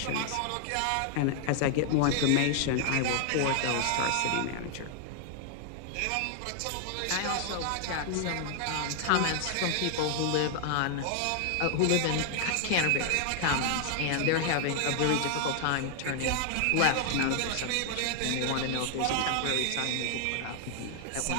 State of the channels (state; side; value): different; both; correlation 0.00